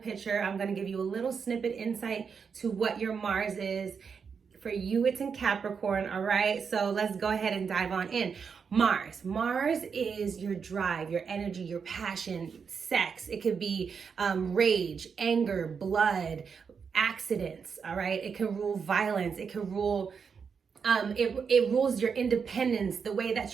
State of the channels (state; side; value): quieter; left; 6.1 dB